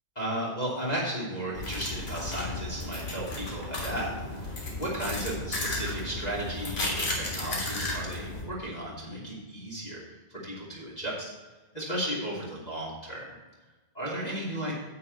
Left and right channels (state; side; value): late; right; 2.0 ms